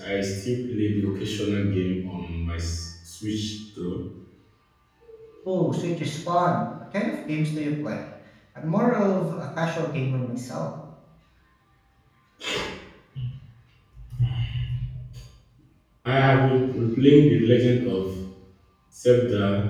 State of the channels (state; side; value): identical; both; correlation 1.00